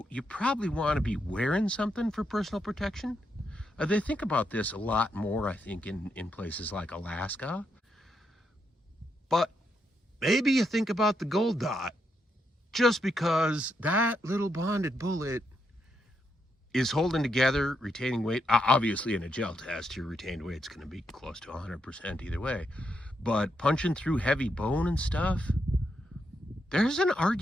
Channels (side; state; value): both; normal; correlation 0.80